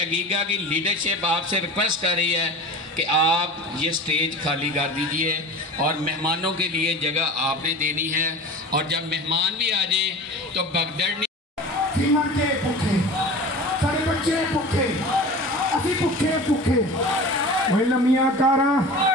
عقیقہ کی لیڈرشپ آپ سے ریکویسٹ کر رہی ہے کہ آپ یہ سٹیج خالی کر دیجئے، اور مہمانوں کے لیے جگہ آپ نے دینی ہے، اور جب مہمان بھی آ جائیں تو بگدڑ نہیں۔ کے پکھے سارے بچے پکھے اسی پکھے پکھے، وہی لمیاں کارا،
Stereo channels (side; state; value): both; normal; correlation 0.35